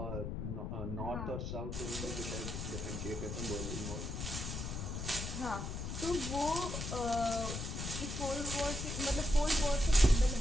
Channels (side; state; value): left; noise; rumble, 4 dB below the sound